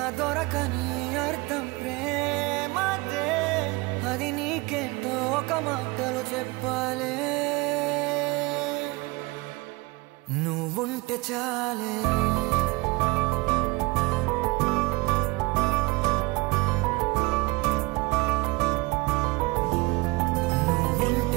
దొరకని అర్థం ప్రేమదే అది నీకేంటో ఒక మాటలో చెప్పాలే నువ్వుంటే చాలే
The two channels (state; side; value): quieter; left; 24.4 dB